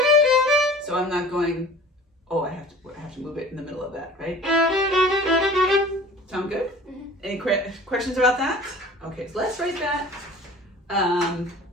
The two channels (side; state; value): both; normal; correlation 0.44